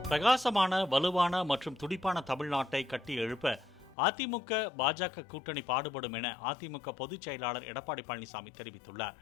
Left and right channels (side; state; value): right; drops out; at 4.0 s